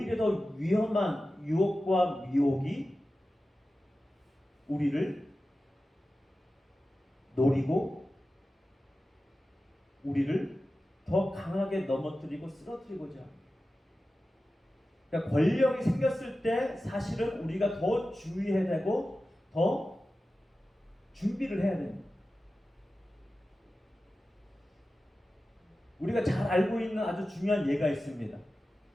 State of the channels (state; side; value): normal; both; correlation 0.94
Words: 더 위험한 유혹과 미혹이 우리를 노리고 우리를 더 강하게 넘어뜨리고 쓰러뜨리고자 합니다. 그러니까 권력이 생겼을 때 사실은 우리가 더 주의해야 되고 더 준비를 해야 됩니다. 우리가 잘 알고 있는 아주 중요한 예가 있습니다.